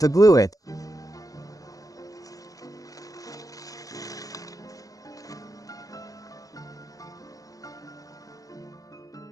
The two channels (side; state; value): right; late; 0.17 ms